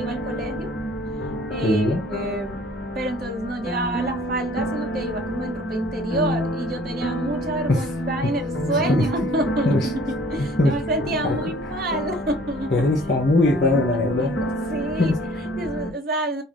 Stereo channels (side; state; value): both; normal; correlation 0.53